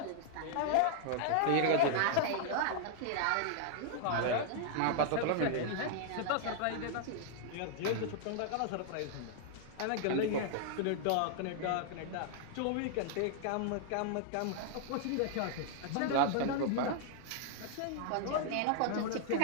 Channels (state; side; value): different; both; correlation -0.01